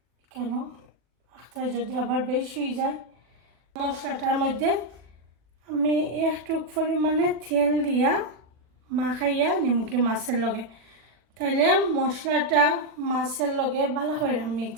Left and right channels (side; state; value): left; late; 40 ms